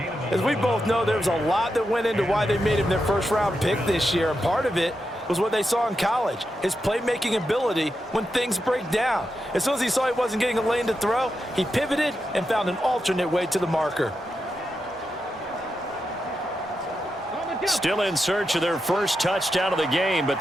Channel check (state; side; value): normal; both; correlation 0.87